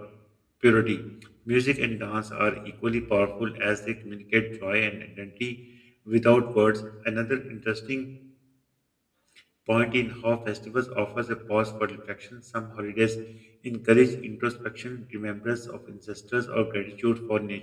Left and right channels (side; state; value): both; identical; correlation 1.00